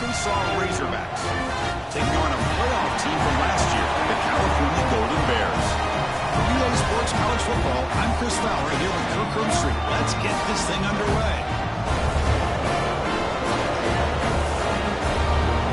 Razorbacks, taking on a playoff team from last year, the California Golden Bears. For Relay Sports College Football, I'm Chris Fowler here with Kirk Herbstreit. Let's get this thing underway.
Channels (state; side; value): identical; both; correlation 1.00